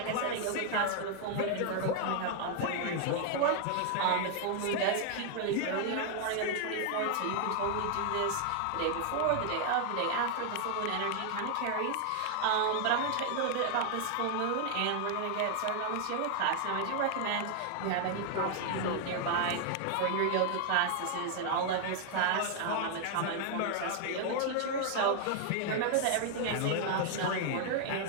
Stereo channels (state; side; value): different; both; correlation 0.00